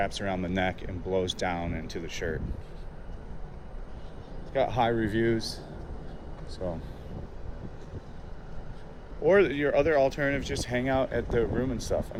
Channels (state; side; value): identical; both; correlation 1.00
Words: around the neck and blows down into the shirt. It's got high reviews. So, or your other alternative, just hang out at the room and stuff. I